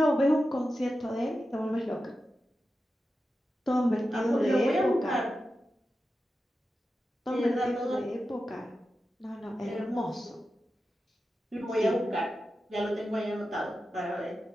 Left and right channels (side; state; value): both; normal; correlation 0.91